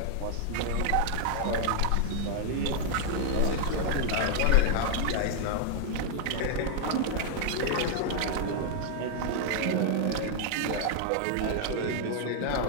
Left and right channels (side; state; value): both; different; correlation -0.01